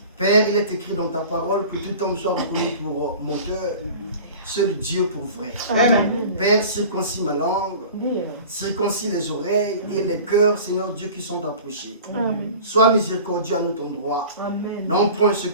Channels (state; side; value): inverted; both; correlation -0.40